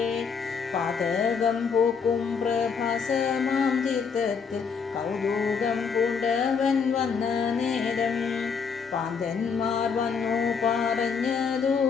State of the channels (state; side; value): quieter; right; 5.9 dB